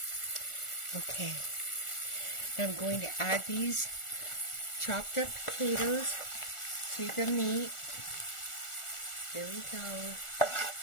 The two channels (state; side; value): late; right; 1.4 ms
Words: Okay, now I'm going to add these chopped up potatoes to the meat. There we go.